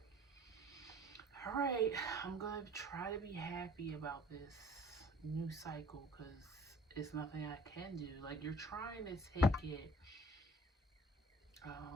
all right, I'm going to try to be happy about this new cycle because it's nothing I can do. Like, you're trying to take it,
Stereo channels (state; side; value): normal; both; correlation 0.50